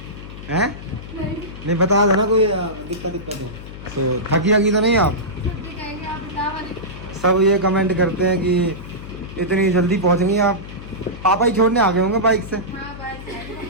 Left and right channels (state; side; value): noise; left; hum, 13 dB below the sound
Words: हैं? नहीं बता देना कोई दिक्कत हो तो। थकी तो नहीं आप? सब ये कमेंट करते हैं कि इतनी जल्दी पहुँचेंगी आप। पापा ही छोड़ने आ गए होंगे बाइक से।